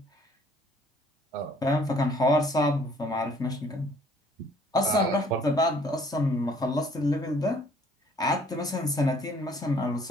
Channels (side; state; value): both; normal; correlation 0.59